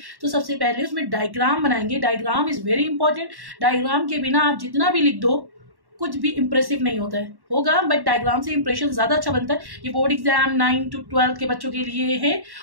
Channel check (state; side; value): late; left; 1.1 ms